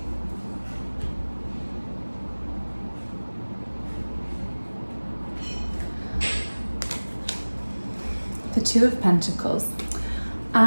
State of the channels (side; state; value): both; inverted; correlation -1.00